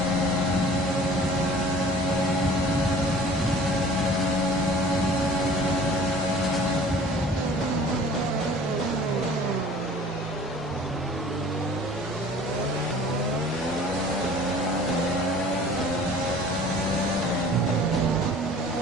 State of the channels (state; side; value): normal; both; correlation 0.47